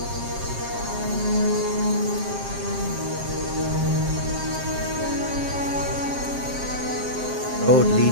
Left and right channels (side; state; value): left; late; 7.5 ms